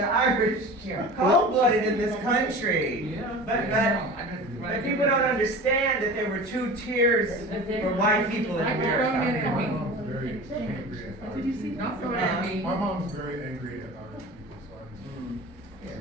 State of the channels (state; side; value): normal; both; correlation 0.36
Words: Irish cold-blooded in this country. But people don't understand that there were two tiers for white people in I can throw it America. at me. Very angry at Did you see? Don't throw it at me. My mom's very angry at Irish